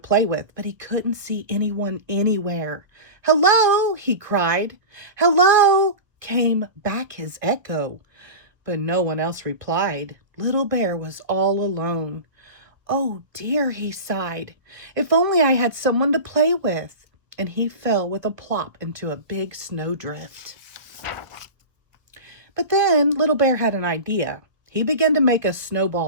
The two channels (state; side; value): late; left; 1.6 ms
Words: with, but he couldn't see anyone anywhere. "Hello!" he cried. "Hello!" came back his echo. But no one else replied. Little Bear was all alone. "Oh dear," he sighed. "If only I had someone to play with." And he fell with a plop into a big snowdrift. But then Little Bear had an idea. He began to make a